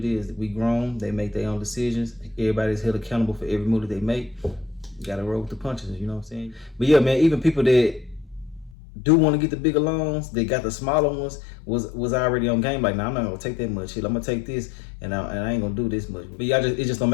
is. We grown. They make their own decisions. Everybody's held accountable for every move that they make. You got to roll with the punches, you know what I'm saying? But yeah, man, even people that do want to get the bigger loans, they got the smaller ones, was already on game. Like, nah, I'm not gonna take that much shit. I'm gonna take this, and I ain't gonna do this much. But yeah, it just don't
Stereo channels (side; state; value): right; drops out; at 8.8 s